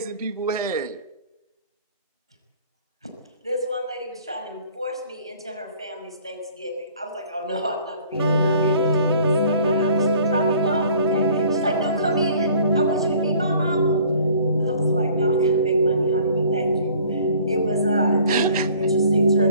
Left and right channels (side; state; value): both; inverted; correlation -0.53